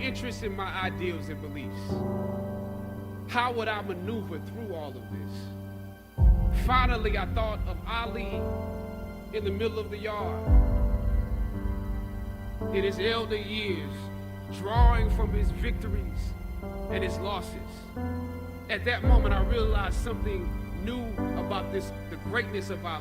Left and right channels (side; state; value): both; identical; correlation 1.00